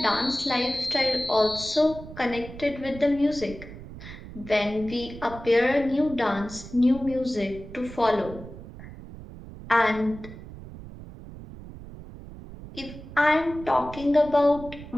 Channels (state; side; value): noise; right; rumble, 14 dB below the sound